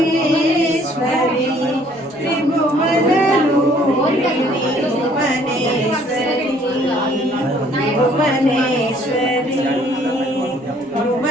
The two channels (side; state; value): both; normal; correlation 0.60